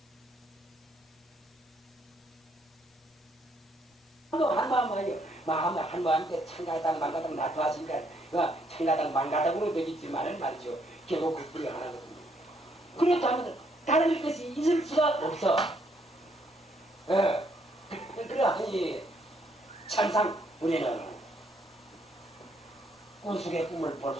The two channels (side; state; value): both; normal; correlation 0.71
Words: 한마음한테 창가당 만가당 나타하시니까 창가당 만가당으로 되겠지만은 말이죠. 결국 그 뿌리가 하나거든요. 그렇다면 다른 것이 있을 수가 없어. 그러하니 참상 우리는 꿈속의 꿈을 볼